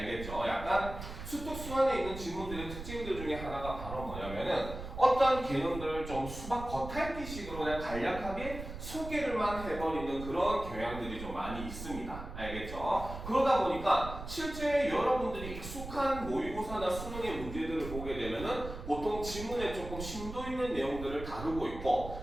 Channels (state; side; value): noise; right; rumble, 9 dB below the sound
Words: 약간 수특 수완에 있는 지문들의 특징들 중에 하나가 바로 뭐냐면은 어떤 개념들을 좀 수박 겉핥기식으로 그냥 간략하게 소개를만 해버리는 그런 경향들이 좀 많이 있습니다. 알겠죠? 그러다 보니까 실제 여러분들이 익숙한 모의고사나 수능의 문제들을 보게 되면은 보통 지문에 조금 심도 있는 내용들을 다루고